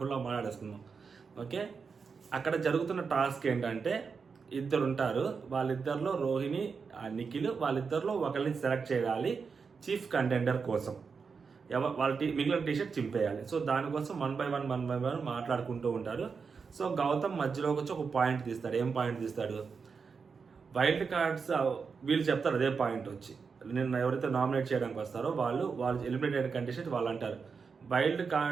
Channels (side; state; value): left; quieter; 5.4 dB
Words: మాట్లాడేసుకుందాం. ఓకే, అక్కడ జరుగుతున్న టాస్క్ ఏంటంటే ఇద్దరు ఉంటారు. వాళ్ళిద్దరిలో రోహిణి, నిఖిల్, వాళ్ళిద్దరిలో ఒకరిని సెలెక్ట్ చేయాలి చీఫ్ కంటెండర్ కోసం. వాళ్ళ మిగిలిన టీషర్ట్ చింపేయాలి. సో దానికోసం వన్ బై వన్ మాట్లాడుకుంటూ ఉంటారు. సో గౌతమ్ మధ్యలోకి వచ్చి ఒక పాయింట్ తీస్తాడు. ఏం పాయింట్ తీస్తాడు? వైల్డ్ కార్డ్స్ వీళ్ళు చెప్తారు అదే పాయింట్ వచ్చి, నిన్న ఎవరైతే నామినేట్ చేయడానికి వస్తారో వాళ్ళు ఎలిమినేటెడ్ కంటెస్టెంట్ వాళ్ళు అంటారు వైల్డ్